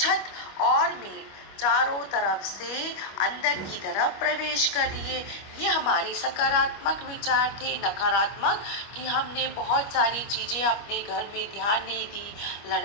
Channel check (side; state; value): right; late; 25 ms